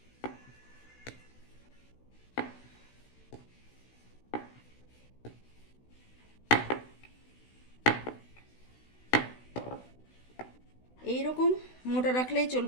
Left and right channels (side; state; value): right; late; 16 ms